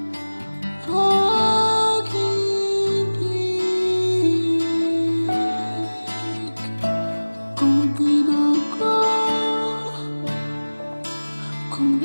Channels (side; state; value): both; inverted; correlation -1.00